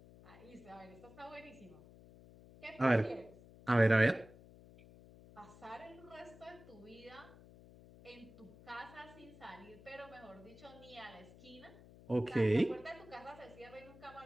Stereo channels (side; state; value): left; noise; hum, 20 dB below the sound